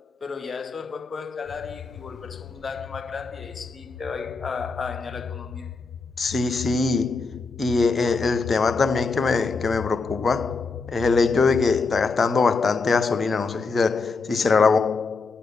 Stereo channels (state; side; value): quieter; right; 4.3 dB